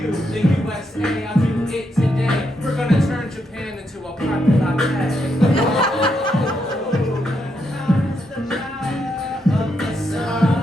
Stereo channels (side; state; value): both; normal; correlation 0.80